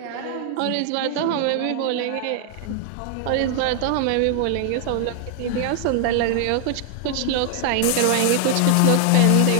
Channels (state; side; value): different; both; correlation 0.00